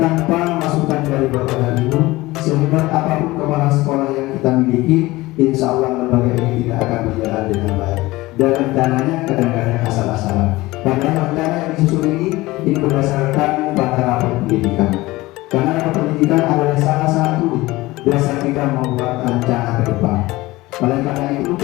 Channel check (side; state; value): right; quieter; 19.6 dB